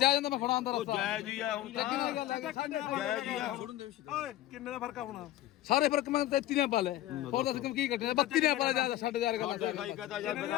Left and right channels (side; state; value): right; quieter; 14.4 dB